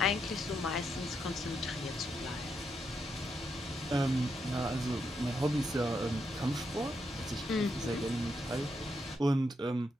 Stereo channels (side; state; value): both; normal; correlation 0.81